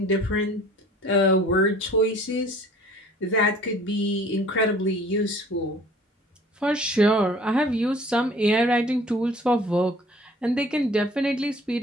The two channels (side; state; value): both; normal; correlation 0.51